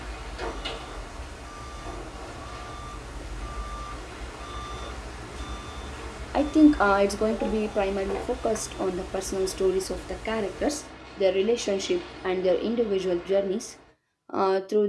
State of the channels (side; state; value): both; identical; correlation 1.00